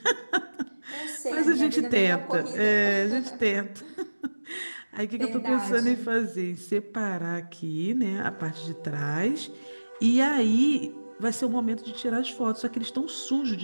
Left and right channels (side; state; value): both; inverted; correlation -1.00